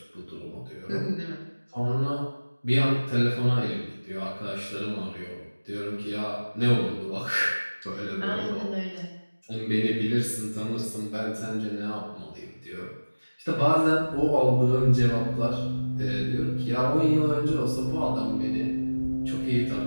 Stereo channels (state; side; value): inverted; both; correlation -1.00